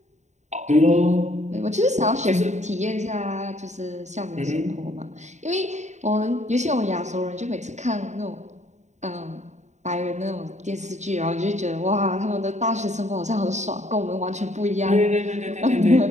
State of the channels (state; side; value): late; left; 0.34 ms